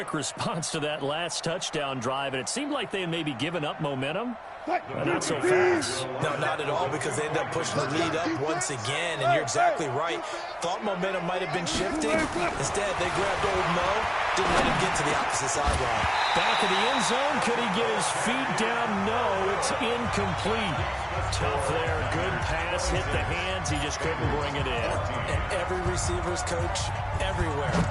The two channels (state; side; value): identical; both; correlation 1.00